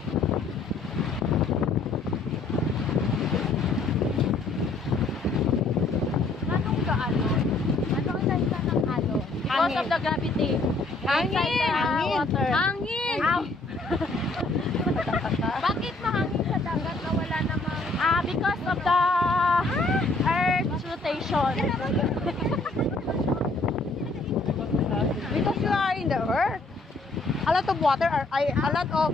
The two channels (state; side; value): quieter; right; 3.3 dB